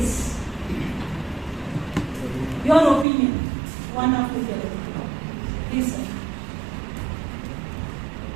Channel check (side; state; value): left; drops out; at 3.1 s